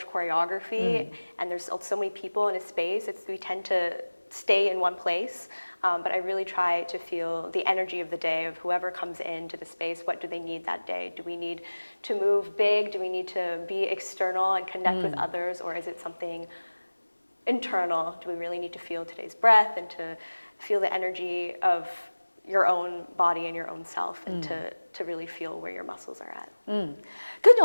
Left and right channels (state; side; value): inverted; both; correlation -1.00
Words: choreography and there's so many people in a space, we tend to stay in one place. But I really try to feel the energy of the day of whoever comes into the space. What do they need that day? Do we need to move big? Do we need to be external and connect with others? Or is it something internal? Do we really need to feel today's breath and to feel the energy of your own body and your own self and to really feel where your muscles are at? 跟住